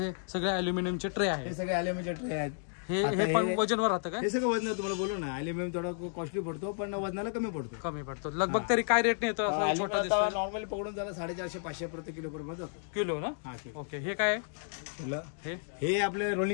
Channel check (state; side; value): silent; right; digital silence